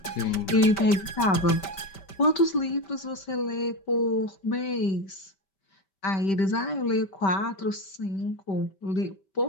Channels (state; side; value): late; right; 5.2 ms